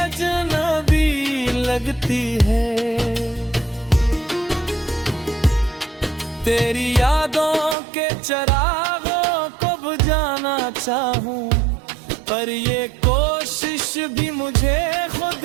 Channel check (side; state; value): left; drops out; at 7.8 s